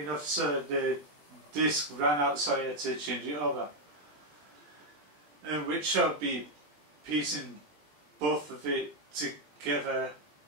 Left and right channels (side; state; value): left; late; 20 ms